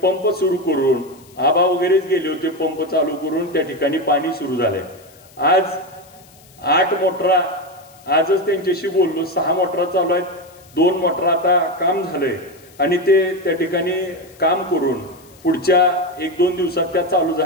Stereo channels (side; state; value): left; noise; hiss, 26 dB below the sound